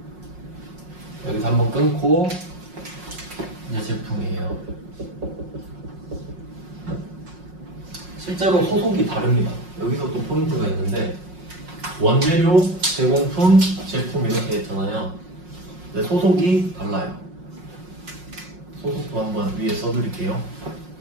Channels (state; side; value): late; left; 5.5 ms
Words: 여기서 한번 끊고 이제 제품이에요. 실제로 소속이 다릅니다. 여기서 또 포인트가 있는데 원재료, 제공품, 제품 이렇게 했잖아요. 근데 소속이 달라요. 소속도 한번 위에 써드릴게요.